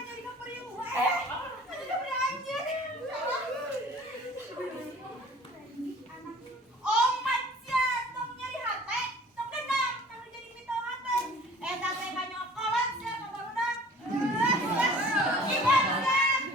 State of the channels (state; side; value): normal; both; correlation 0.48